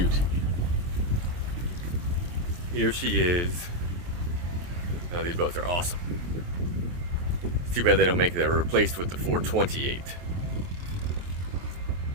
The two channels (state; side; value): late; left; 23 ms